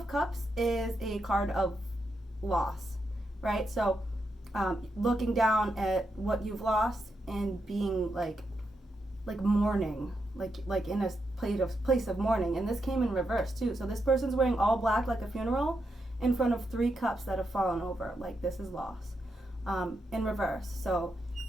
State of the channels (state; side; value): normal; both; correlation 0.84